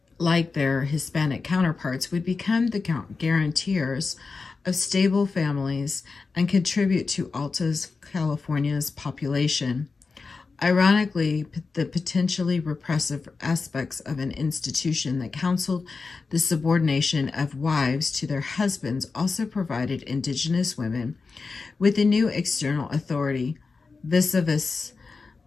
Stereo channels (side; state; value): right; quieter; 4.4 dB